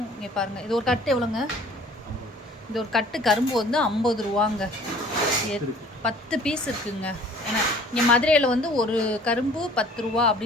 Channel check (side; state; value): both; normal; correlation 0.52